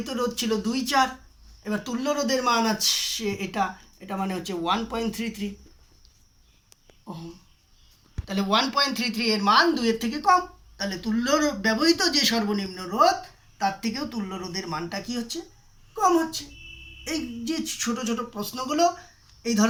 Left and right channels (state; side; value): identical; both; correlation 1.00